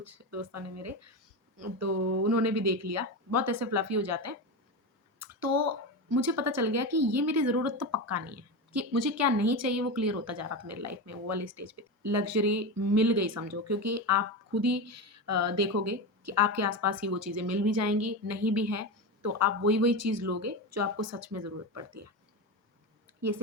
दोस्तों ने मेरे, तो उन्होंने भी देख लिया, बहुत ऐसे फ्लफ़ी हो जाते हैं। तो मुझे पता चल गया कि ये मेरी ज़रूरत तो पक्का नहीं है, कि मुझे क्या नहीं चाहिए वो क्लियर होता जा रहा था मेरी लाइफ में वो वाली स्टेज पे। लग्ज़री मिल गई समझो क्योंकि आप खुद ही देखोगे कि आपके आस-पास ही वो चीज़ें मिल भी जाएँगी, नहीं भी है तो आप वही-वही चीज़ लोगे जो आपको सच में ज़रूरत पड़ती है। ये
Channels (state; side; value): normal; both; correlation 0.19